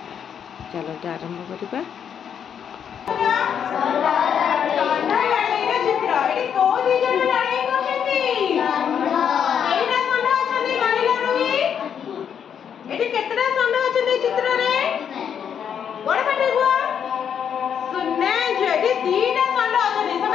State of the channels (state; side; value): quieter; right; 8.1 dB